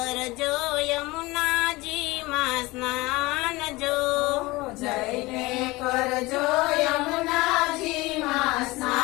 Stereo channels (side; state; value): right; quieter; 21.6 dB